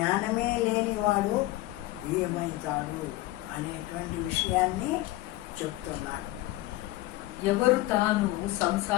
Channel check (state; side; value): quieter; right; 17.8 dB